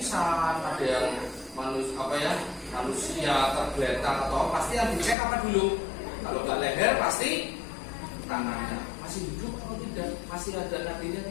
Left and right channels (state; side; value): drops out; right; at 5.2 s